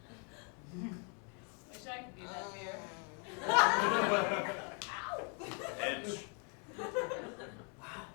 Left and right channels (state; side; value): quieter; right; 39.2 dB